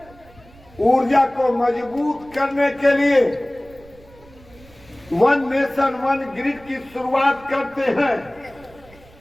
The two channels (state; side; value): noise; right; rumble, 25 dB below the sound